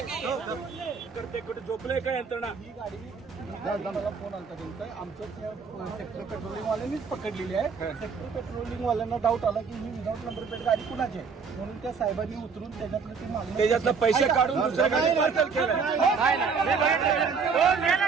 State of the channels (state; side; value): quieter; left; 5.4 dB